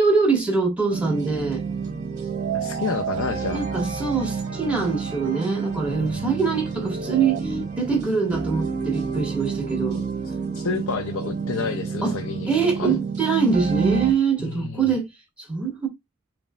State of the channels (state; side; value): quieter; left; 4.0 dB